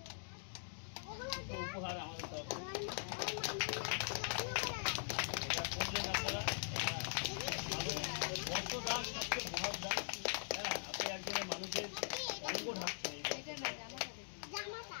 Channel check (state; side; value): silent; right; digital silence